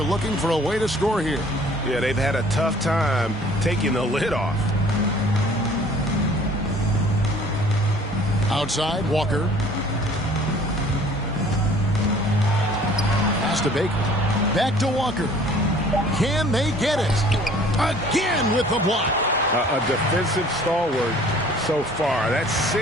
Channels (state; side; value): normal; both; correlation 0.52